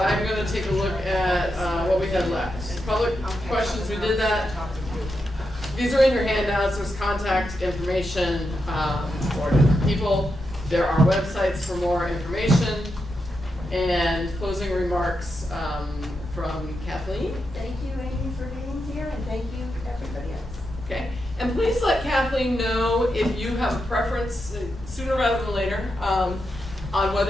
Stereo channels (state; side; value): normal; both; correlation 0.86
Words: going to take a look at what we had left. Public questions, we did that. These are in your handouts. There's contact information for different people. There are websites for more information. And closing remarks from Kathleen. Thank you, Amy, for being here, and thank you, everybody else. Okay, and please let Kathleen know if you have a preference, sooner rather than later, on